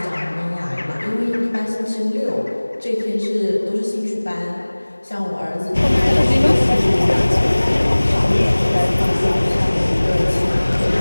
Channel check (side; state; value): both; inverted; correlation -1.00